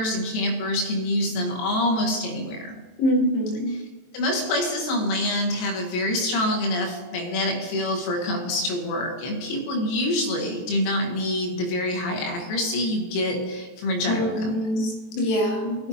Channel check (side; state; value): right; late; 23 ms